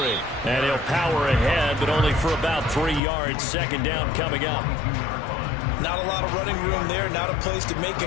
And he'll power ahead, but only for about 3 yards. Second down coming up. Not a lot of running room there. Not a place to make a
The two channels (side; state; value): right; drops out; at 3.0 s